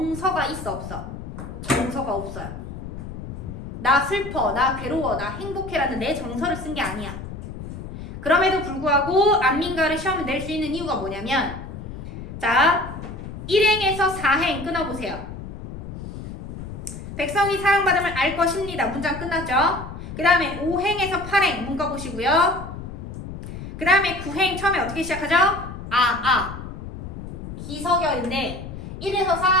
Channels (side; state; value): left; noise; rumble, 10 dB below the sound